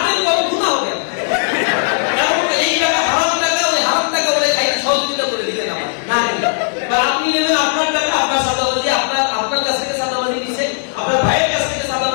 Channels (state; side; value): silent; right; 68 dB below the other